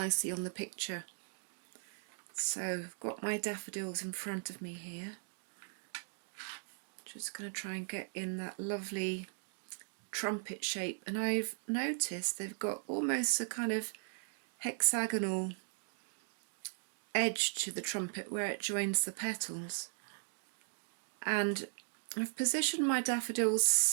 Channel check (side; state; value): left; silent; digital silence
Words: on the picture. So I've got my daffodils in front of me here. Just going to try and get in that lovely trumpet shape, and I've noticed they've got almost a kind of hexagonal edge to the trumpet where it joins the petals. And I've positioned my daffodils